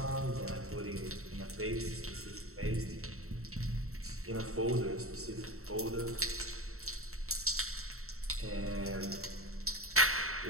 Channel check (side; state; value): left; late; 0.63 ms